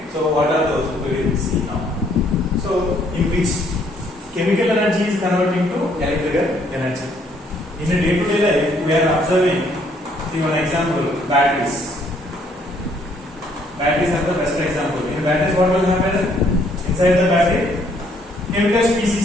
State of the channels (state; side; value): normal; both; correlation 0.66